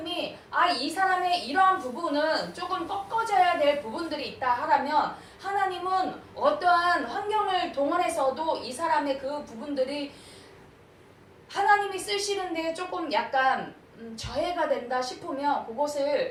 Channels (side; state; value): both; identical; correlation 1.00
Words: 이 사람의 이러한 부분은 조금 꺾어져야 될 부분들이 있다 하라면, 하나님은 어떠한 환경을 동원해서도 이 사람의 그 부분들이 하나님이 쓰시는데 조금 약간 저해가 된다 싶으면